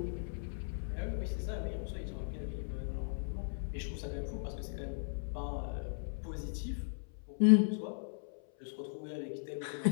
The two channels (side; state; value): right; silent; 53 dB below the other